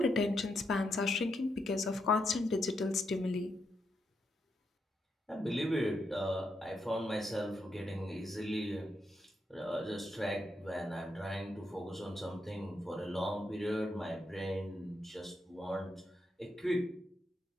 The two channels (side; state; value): both; normal; correlation 0.81